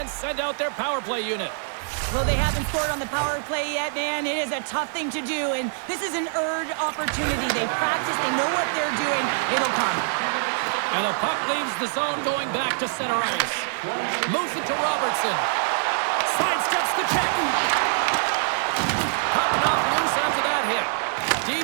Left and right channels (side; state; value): left; silent; digital silence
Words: send out their power play unit. Well, they haven't scored on the power play yet, man. It is a tough thing to do, and this is an earned opportunity. They practice, they know what they're doing. It'll come. And the puck leaves the zone going back to center ice. Moves it to Robertson. Sidesteps the check. Puck knocked loose after that hit.